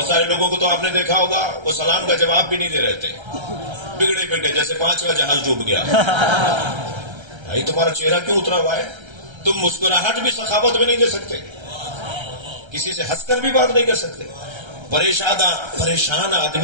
سارے لوگوں کو تو آپ نے دیکھا ہوگا وہ سلام کا جواب بھی نہیں دے رہے تھے, بگڑے بگڑے جیسے 5واں جہاز ڈوب گیا. بھائی تمہارا چہرہ کیوں اترا ہوا ہے؟ تم مسکراہٹ بھی سخاوت میں نہیں دے سکتے, کسی سے ہنس کر بھی بات نہیں کر سکتے. پریشان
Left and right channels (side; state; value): left; late; 1.3 ms